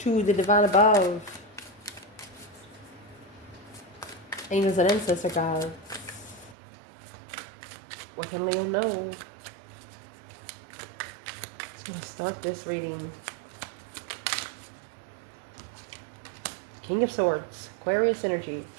the divine above, angels and ancestor guides. What can Leo know? I'm going to start this reading. King of Swords, Aquarius energy,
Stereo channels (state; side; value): drops out; left; at 6.6 s